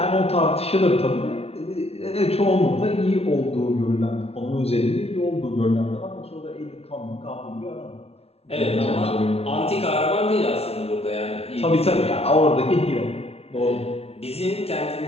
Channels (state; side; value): late; right; 0.30 ms